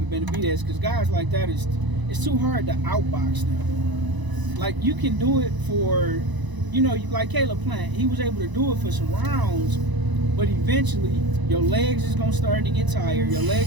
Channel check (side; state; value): left; late; 1.0 ms